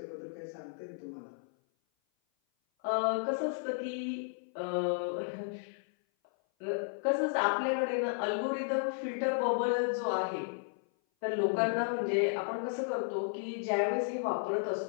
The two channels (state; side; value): silent; right; 55 dB below the other